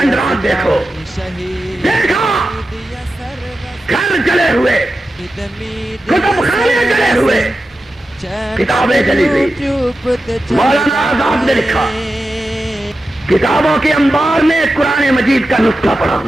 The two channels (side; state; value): both; normal; correlation 0.92